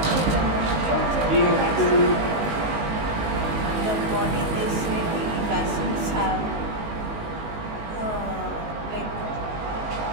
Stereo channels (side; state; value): left; late; 19 ms